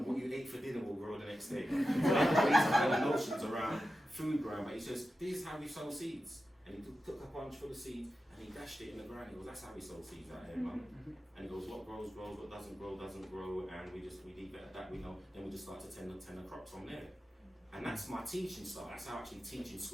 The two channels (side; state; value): both; normal; correlation 0.92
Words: what you ate for dinner will grow the next day. So these kind of notions around food growing, but he says, this is how we sow seeds. And he took a bunch full of seeds and he dashed it in the ground. He goes, that's how we sow seeds out here, man. And he goes, what grows, grows, what doesn't grow, and we leave it at that, we know, then we just start to tend the crops from there. And that's my teaching style. That's how I actually teach in